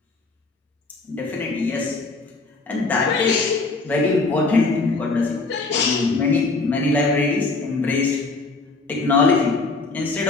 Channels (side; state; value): right; quieter; 3.7 dB